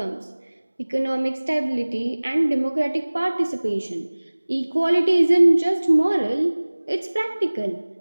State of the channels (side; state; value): both; inverted; correlation -1.00